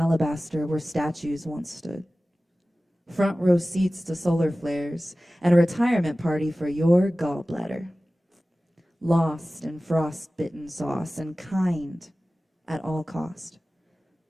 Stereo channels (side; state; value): both; normal; correlation 0.97